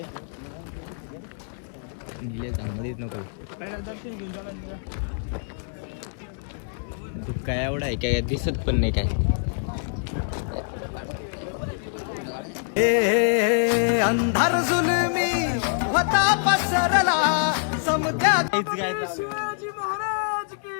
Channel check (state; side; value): silent; right; 61 dB below the other